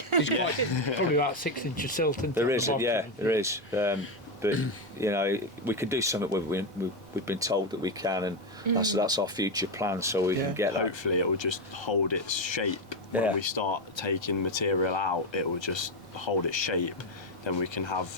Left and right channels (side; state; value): both; normal; correlation 0.09